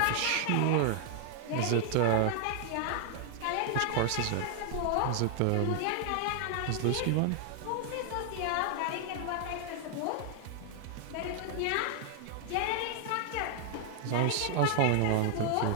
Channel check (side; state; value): both; different; correlation 0.00